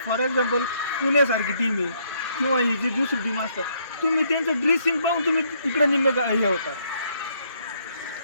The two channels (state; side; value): inverted; both; correlation -0.70